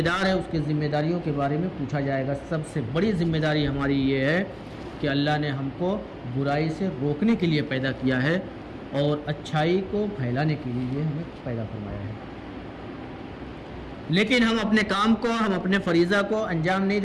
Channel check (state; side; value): identical; both; correlation 1.00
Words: دار ہے اس کی ذمہ داریوں کے بارے میں پوچھا جائے گا. سب سے بڑی ذمہ داری ہماری یہ ہے کہ اللہ نے ہم کو برائی سے روکنے کے لیے پیدا کیا ہے اور اچھائی کو پھیلانے کے لیے ہمیں پیدا فرمایا ہے. لیکن ہم اپنے کام کو ہم اپنے فریضہ کو انجام نہیں